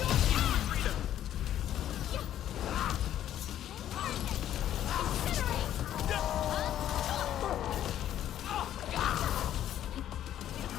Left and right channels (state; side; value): quieter; right; 11.4 dB